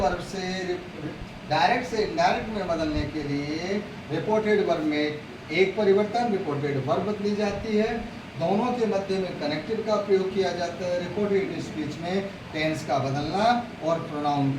से डायरेक्ट से इनडायरेक्ट में बदलने के लिए रिपोर्टेड वर्ब में एक परिवर्तन, रिपोर्टेड वर्ब बदली जाती है। दोनों के मध्य में कनेक्टिव का प्रयोग किया जाता है। रिपोर्टेड स्पीच में टेंस का बदलना और प्रोनाउन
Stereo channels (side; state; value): both; identical; correlation 1.00